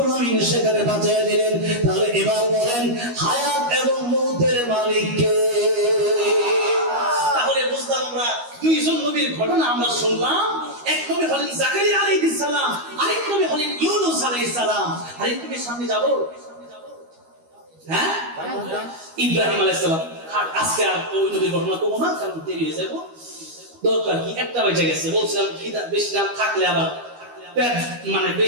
আলামিন সেখানে বাঁচিয়ে দিলেন। তাহলে এবার বলেন, হায়াত এবং মউতের মালিক কে? তাহলে বুঝলাম আমরা দুইজন নবীর ঘটনা আমরা শুনলাম, এক নবী হলেন জাকারিয়া আলাইহিস সালাম, আরেক নবী হলেন ইউনূস আলাইহিস সালাম। আরেক নবীর সামনে যাব, হ্যাঁ, ইব্রাহিম আলাইহিস সালাম। আর আজকে আর ওই নবীর ঘটনা করবো না, কারণ দেরি হয়ে যাবো। দরকার কি, একটা বেজে গেছে। বলছিলাম বেশি নাম থাকলে আবার পেট মানে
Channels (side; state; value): left; late; 12 ms